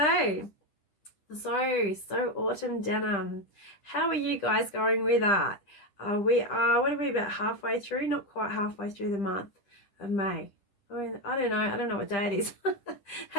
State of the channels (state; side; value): late; right; 10 ms